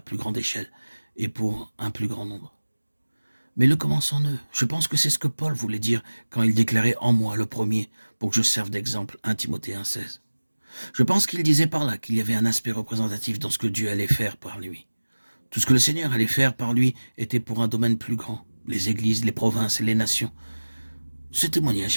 grande échelle et pour un plus grand nombre. Mais le commence en eux. Je pense que c'est ce que Paul voulait dire quand il déclarait en moi le premier pour que je serve d'exemple 1 Timothée 1,16. Je pense qu'il disait par là qu'il y avait un aspect représentatif dans ce que Dieu allait faire par lui. Tout ce que le Seigneur allait faire par lui était pour un domaine plus grand, les églises, les provinces et les nations. Ce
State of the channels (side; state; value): both; inverted; correlation -1.00